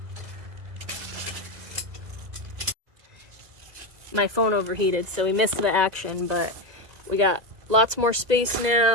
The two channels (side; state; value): left; late; 2.0 ms